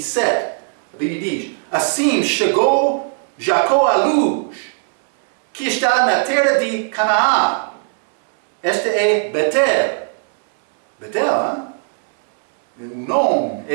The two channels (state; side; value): silent; left; 64 dB below the other